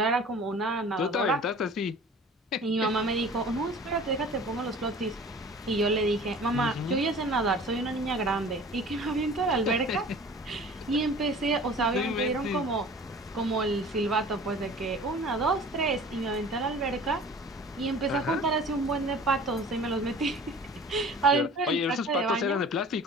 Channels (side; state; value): both; normal; correlation 0.44